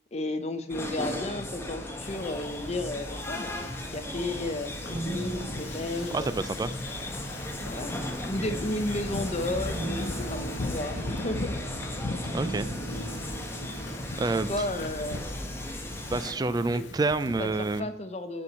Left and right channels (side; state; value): both; normal; correlation 0.53